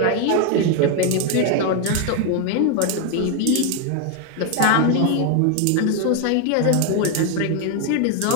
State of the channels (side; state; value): both; different; correlation 0.01